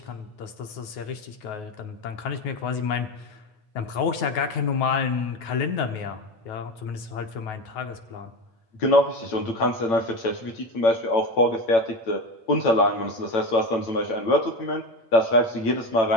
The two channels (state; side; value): late; right; 9.4 ms